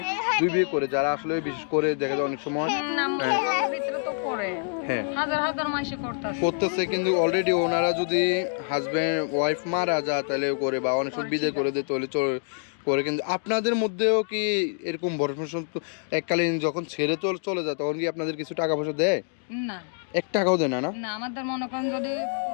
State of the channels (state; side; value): silent; right; 61 dB below the other